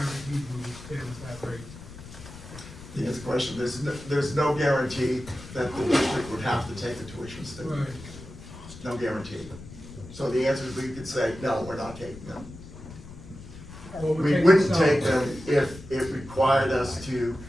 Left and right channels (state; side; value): noise; left; rumble, 15 dB below the sound